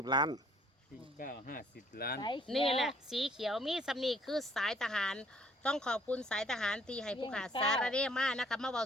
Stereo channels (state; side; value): normal; both; correlation 0.61